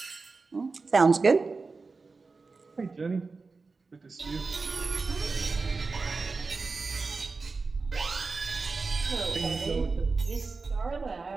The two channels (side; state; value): left; quieter; 4.2 dB